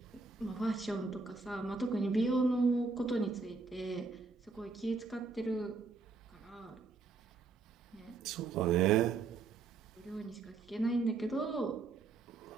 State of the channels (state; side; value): quieter; left; 4.3 dB